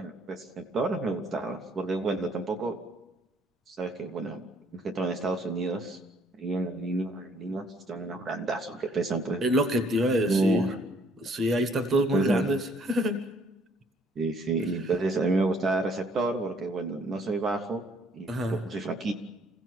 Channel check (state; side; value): normal; both; correlation 0.62